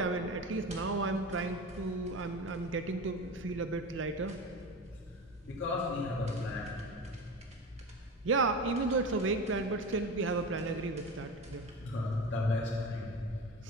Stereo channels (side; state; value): both; normal; correlation 0.29